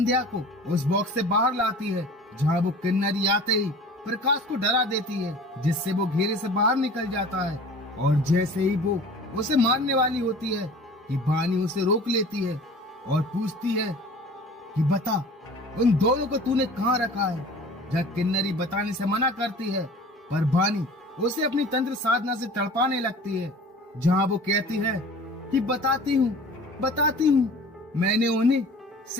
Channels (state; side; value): normal; both; correlation 0.43